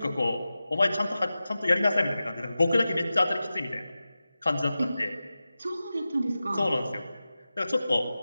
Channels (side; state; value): both; inverted; correlation -0.94